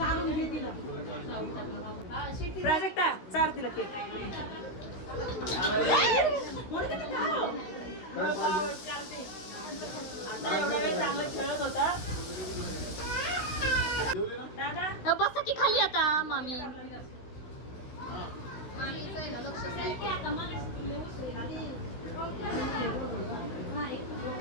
प्राजक्ता चार तिला केक. एवढा वेळ चांगला खेळत होता दादा. बसा की खाली आता मामी.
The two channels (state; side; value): late; right; 16 ms